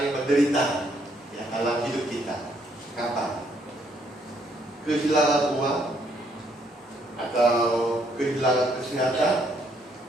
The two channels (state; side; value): normal; both; correlation 0.70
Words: menderita ya dalam hidup kita? Kapan? Kehilangan uang, atau kehilangan kesehatan,